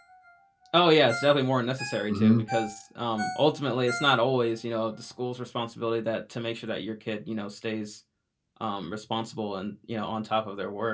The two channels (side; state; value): both; identical; correlation 1.00